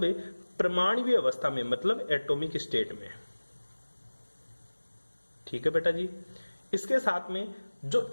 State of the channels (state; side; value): inverted; both; correlation -1.00